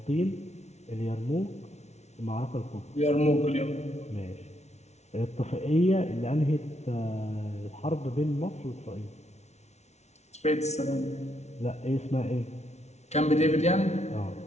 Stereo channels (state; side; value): late; right; 0.32 ms